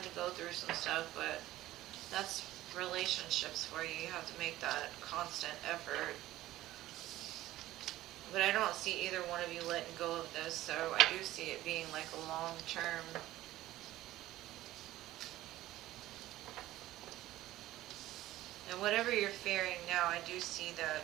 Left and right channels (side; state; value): left; quieter; 15.5 dB